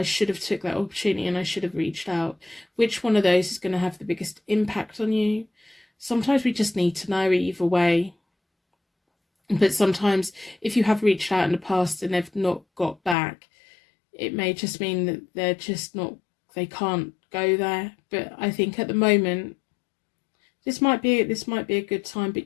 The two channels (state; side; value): drops out; right; at 13.2 s